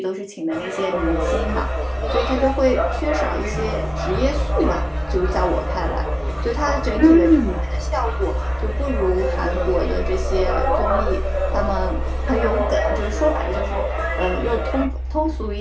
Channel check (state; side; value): identical; both; correlation 1.00